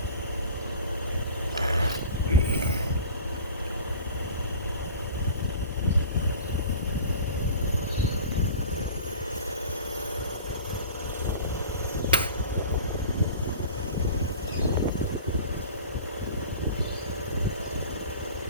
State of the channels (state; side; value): inverted; both; correlation -0.39